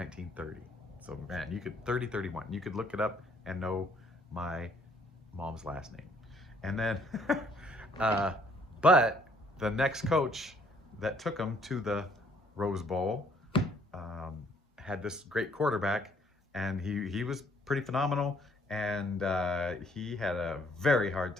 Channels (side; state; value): both; normal; correlation 0.64